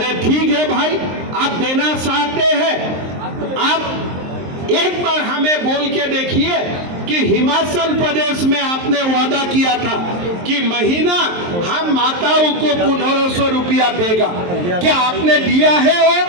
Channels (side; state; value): left; late; 23 ms